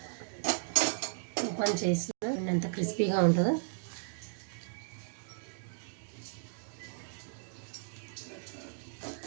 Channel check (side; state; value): left; silent; digital silence